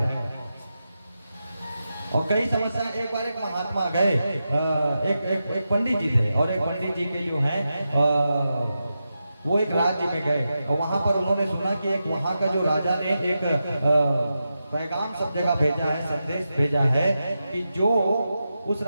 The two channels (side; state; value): both; inverted; correlation -0.89